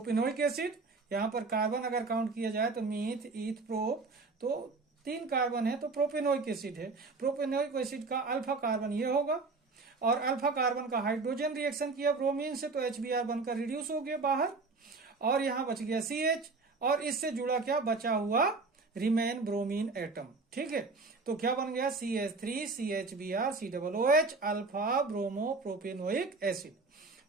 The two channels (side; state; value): left; quieter; 3.9 dB